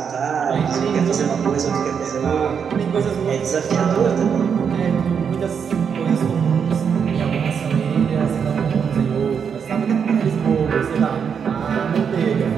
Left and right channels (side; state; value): left; quieter; 6.9 dB